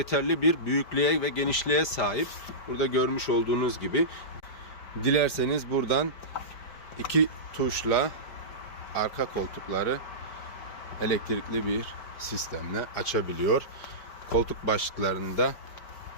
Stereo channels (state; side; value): late; right; 5.1 ms